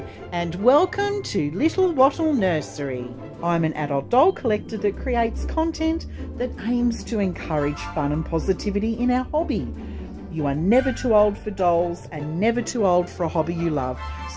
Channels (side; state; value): both; identical; correlation 1.00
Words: and welcome to Little Wattle Nursery. I'm an adult doll collector that creates content that aims to encourage fun and positivity in our hobby. You are never too old for dolls and never too old for a hobby you love,